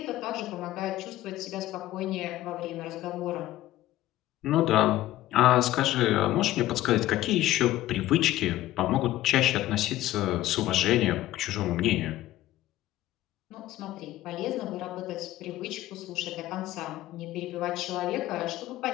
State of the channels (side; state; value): right; quieter; 15.0 dB